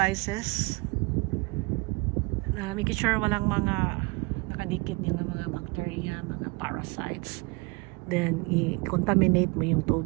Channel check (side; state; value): left; quieter; 26.7 dB